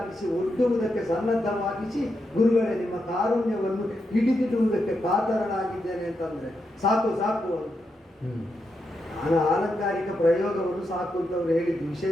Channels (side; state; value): both; normal; correlation 0.84